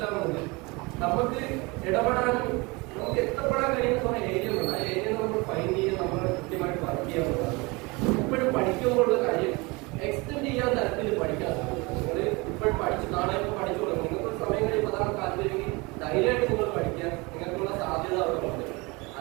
നമുക്ക് ഇടപെടാനും നമുക്ക് എത്തപ്പെടാൻ കഴിയുന്ന കുറെ ഏരിയകളുണ്ട്. ആ ഏരിയ നമ്മൾ ഫൈൻഡ് ചെയ്യാൻ നമ്മൾ കൃത്യമായിട്ട് വർക്ക് ചെയ്യാവുന്നതാണ്. ഇപ്പോഴും പഠിക്കുമ്പോഴുള്ള കാര്യം എക്സ്റ്റെൻഡ് ചെയ്യാൻ തരത്തിൽ പഠിക്കാൻ നിങ്ങൾ ഇപ്പോഴും പഠിച്ച് നാളെ ഇപ്പോൾ പഠിച്ചു തുടങ്ങും. നിങ്ങൾക്ക് സമയം കഴിയുമ്പോൾ അതാണ് താല്പര്യമെങ്കിൽ ധൈര്യമായിട്ട് നിങ്ങൾ പഠിക്കാൻ നിങ്ങൾക്കുള്ള സാധ്യത അവിടെ ഉണ്ട്.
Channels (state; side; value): quieter; left; 25.9 dB